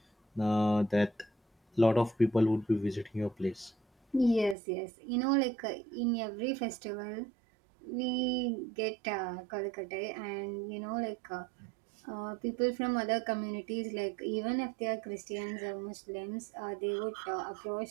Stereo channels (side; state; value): left; drops out; at 4.5 s